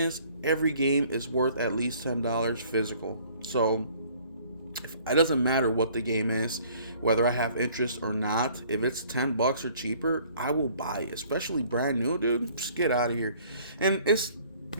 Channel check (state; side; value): inverted; both; correlation -0.57